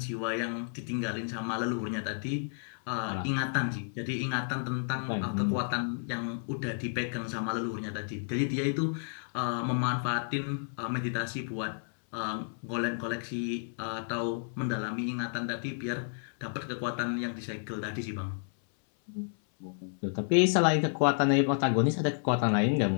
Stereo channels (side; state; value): right; silent; 57 dB below the other